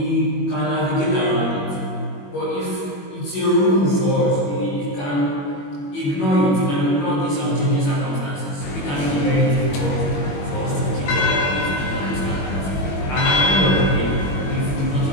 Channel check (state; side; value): late; right; 21 ms